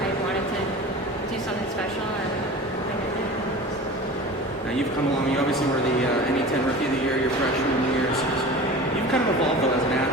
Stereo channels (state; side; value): normal; both; correlation 0.35